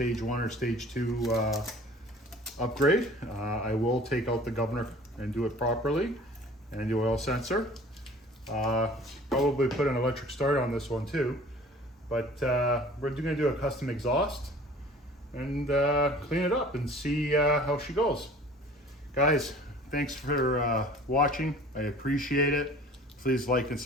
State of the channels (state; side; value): normal; both; correlation 0.47